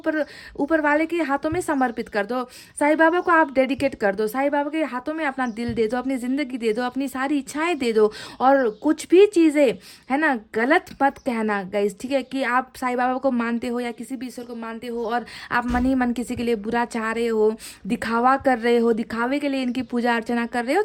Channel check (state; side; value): identical; both; correlation 1.00